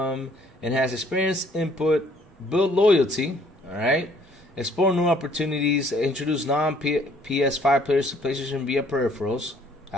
experience. Input. Build loyalty. Alright. Explore new opportunities. Introduce non-PS5 players to PlayStation via peripherals.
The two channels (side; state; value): both; normal; correlation 0.61